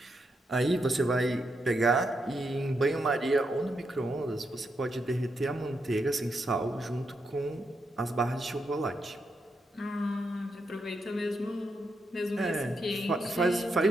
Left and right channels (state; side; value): normal; both; correlation 0.82